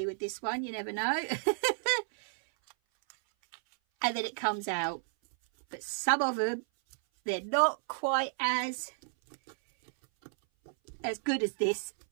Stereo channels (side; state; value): left; silent; 57 dB below the other